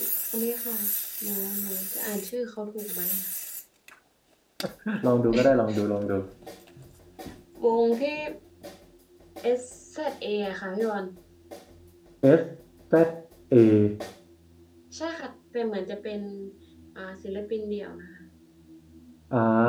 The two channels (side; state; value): both; identical; correlation 1.00